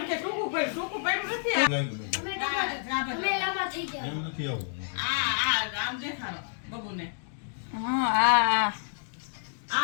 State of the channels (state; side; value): silent; right; digital silence